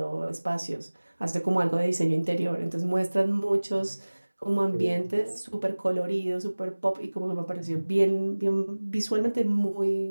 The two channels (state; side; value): inverted; both; correlation -1.00